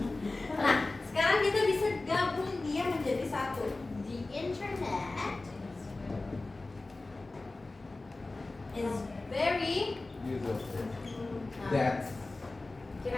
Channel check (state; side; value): quieter; right; 3.2 dB